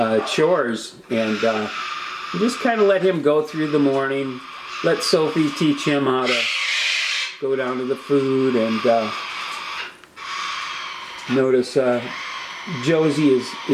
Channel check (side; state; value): both; identical; correlation 1.00